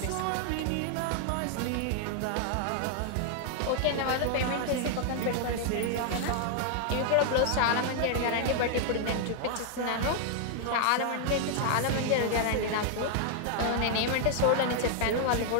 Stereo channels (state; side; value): different; both; correlation 0.00